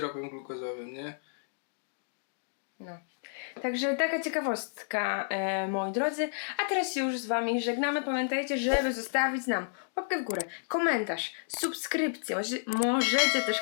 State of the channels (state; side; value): silent; right; digital silence